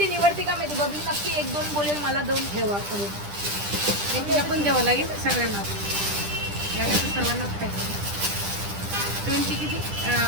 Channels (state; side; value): late; left; 10 ms